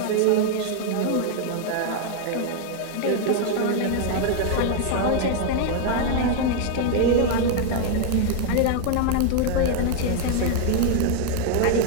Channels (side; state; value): both; different; correlation 0.00